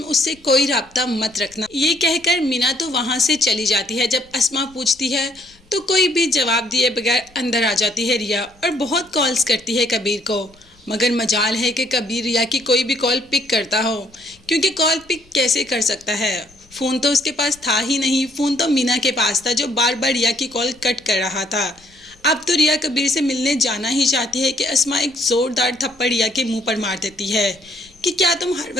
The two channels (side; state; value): left; noise; rumble, 30 dB below the sound